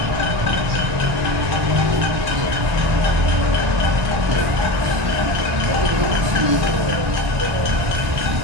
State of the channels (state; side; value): late; left; 1.0 ms